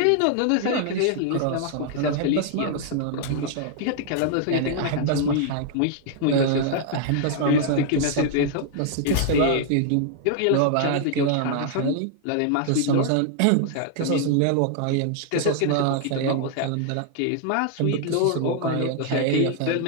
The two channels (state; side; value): different; both; correlation -0.01